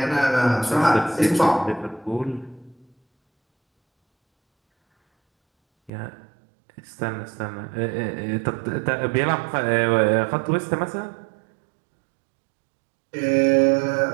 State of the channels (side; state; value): left; drops out; at 5.9 s